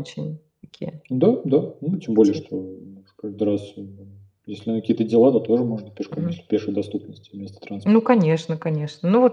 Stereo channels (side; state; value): both; identical; correlation 1.00